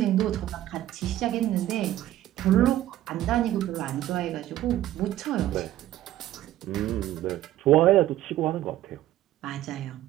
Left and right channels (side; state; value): left; quieter; 13.6 dB